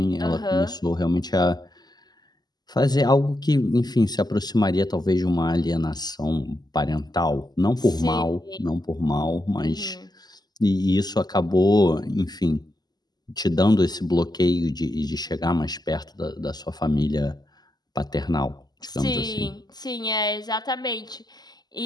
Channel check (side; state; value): right; late; 0.20 ms